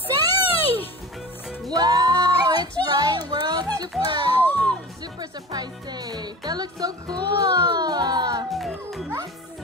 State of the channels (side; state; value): both; normal; correlation 0.33